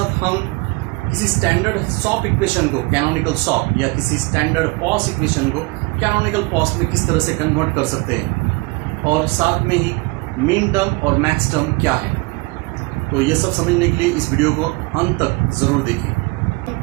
हम किसी स्टैंडर्ड सॉप इक्वेशन को कैनोनिकल सॉप या किसी स्टैंडर्ड पॉस इक्वेशन को कैनोनिकल पॉस में किस तरह से कन्वर्ट कर सकते हैं और साथ में ही मीन टर्म और मैक्स टर्म क्या है। तो ये सब समझने के लिए इस वीडियो को अंत तक जरूर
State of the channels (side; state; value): left; quieter; 25.5 dB